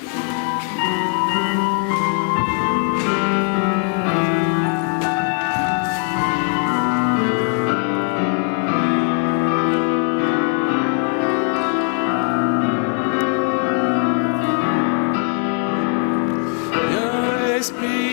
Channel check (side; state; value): right; quieter; 39.1 dB